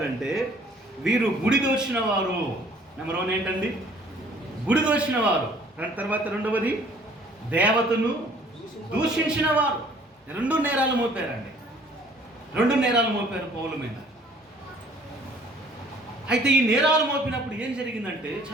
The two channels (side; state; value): both; normal; correlation 0.56